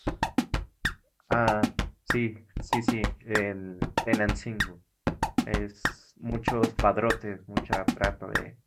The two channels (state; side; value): identical; both; correlation 1.00